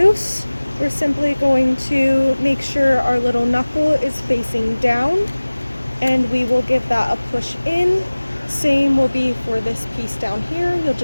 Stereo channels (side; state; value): both; inverted; correlation -1.00